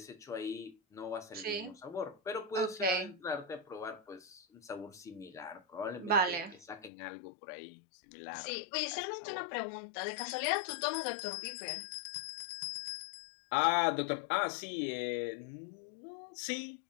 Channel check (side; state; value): right; drops out; at 6.9 s